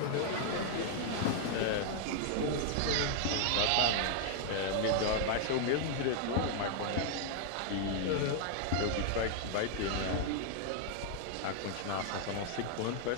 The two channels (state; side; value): different; both; correlation 0.00